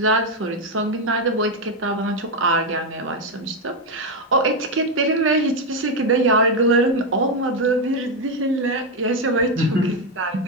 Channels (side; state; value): both; normal; correlation 0.06